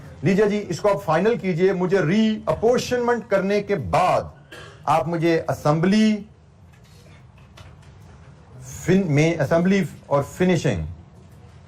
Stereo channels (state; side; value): identical; both; correlation 1.00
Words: लीजिए जी, इसको आप फाइनल कीजिए। मुझे रीअपोर्शनमेंट करने के बाद आप मुझे असेंबली और finishing